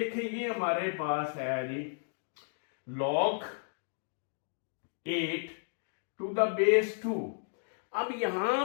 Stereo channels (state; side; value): silent; right; digital silence